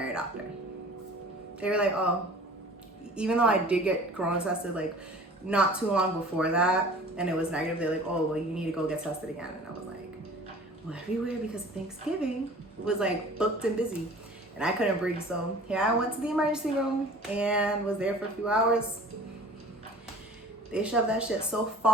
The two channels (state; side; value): normal; both; correlation 0.45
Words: doctor. They were like, oh, even though I did get corona tested not too long before that and it was negative, they're like, oh, well, you need to go get tested again. And I was like, well, everywhere because Thanksgiving was booked and busy and I couldn't breathe. So here I went to the emergency room and was there for a few hours. They shoved that shit so